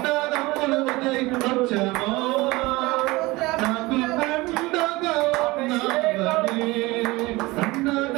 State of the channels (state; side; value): quieter; left; 21.6 dB